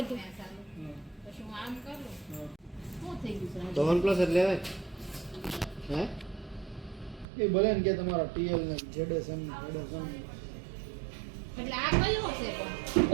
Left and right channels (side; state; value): left; drops out; at 7.2 s